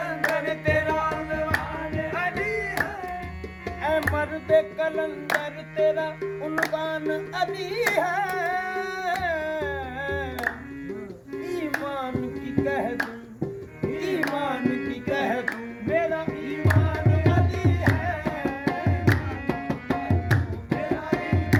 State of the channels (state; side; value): identical; both; correlation 1.00